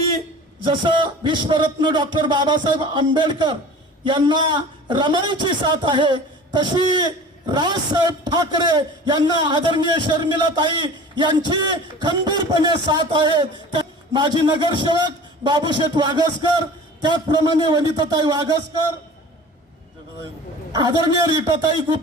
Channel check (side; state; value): both; normal; correlation 0.41